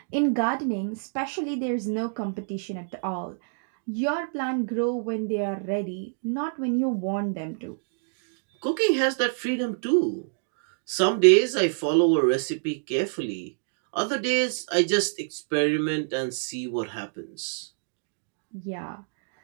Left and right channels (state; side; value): silent; left; digital silence